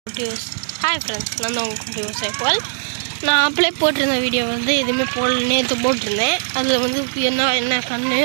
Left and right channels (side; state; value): left; silent; digital silence